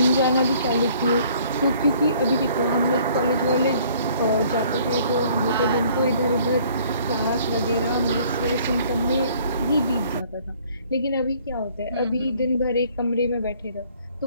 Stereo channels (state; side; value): inverted; both; correlation -0.58